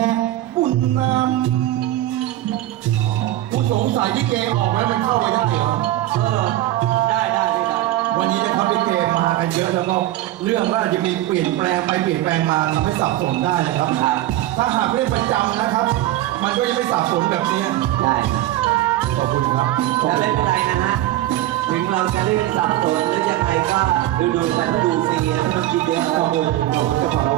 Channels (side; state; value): left; quieter; 14.6 dB